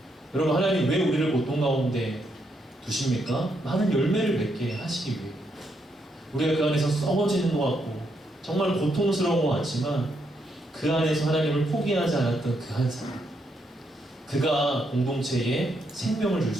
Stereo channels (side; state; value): both; normal; correlation 0.78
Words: 여러분, 하나님 왜 우리를 고통 가운데 두십니까? 많은 열매를 맺게 하시기 위해. 우리가 그 안에서 썩어지는 것 같고 정말 고통스러운 것 같지만 그 안에서 하나님을 포기하지 않았던 그 한 사람, 그가 공동체에 생명을 줄